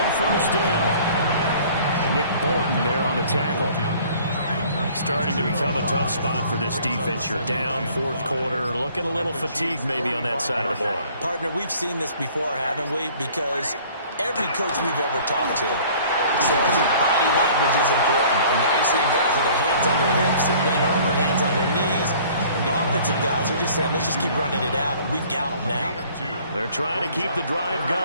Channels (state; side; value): inverted; both; correlation -0.53